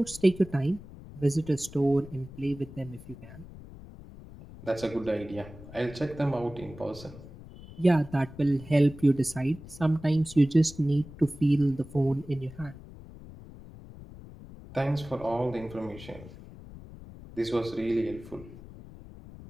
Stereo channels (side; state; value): left; noise; rumble, 17 dB below the sound